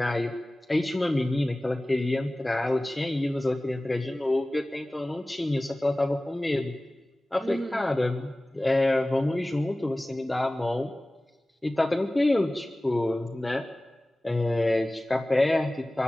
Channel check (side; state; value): both; normal; correlation 0.98